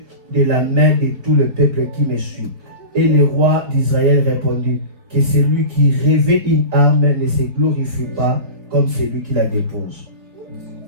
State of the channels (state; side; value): late; left; 4.1 ms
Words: de la main de tout le peuple qui me suit. Et le roi d'Israël répondit que celui qui revêt une arme ne se glorifie pas comme celui qui la dépose.